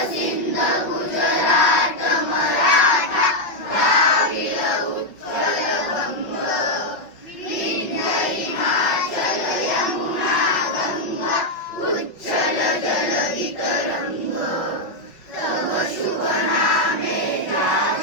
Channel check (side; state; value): right; late; 5.5 ms